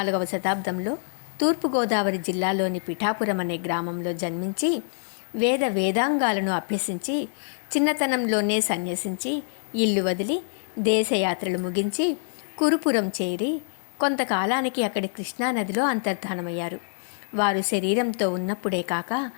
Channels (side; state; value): right; silent; 55 dB below the other